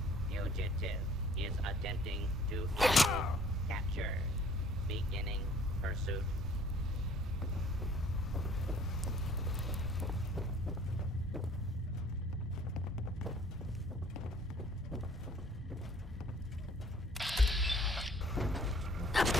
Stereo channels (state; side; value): normal; both; correlation 0.55